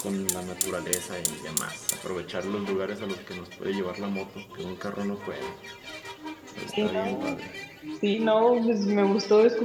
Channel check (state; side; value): identical; both; correlation 1.00